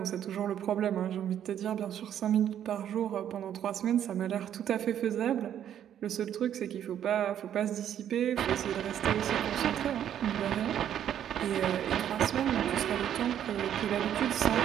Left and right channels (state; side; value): quieter; left; 10.1 dB